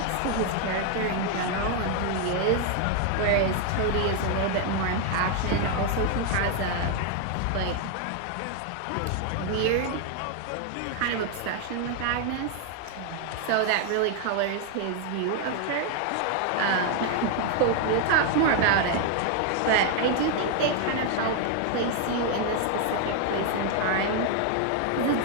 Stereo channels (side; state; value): both; different; correlation 0.00